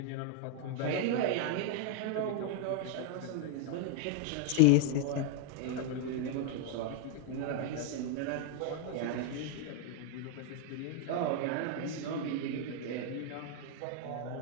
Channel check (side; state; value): both; different; correlation 0.00